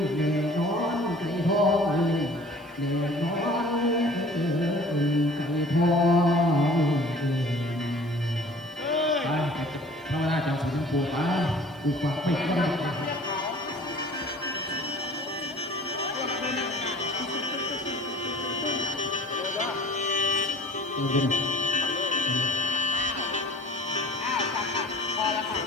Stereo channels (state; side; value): noise; right; hiss, 28 dB below the sound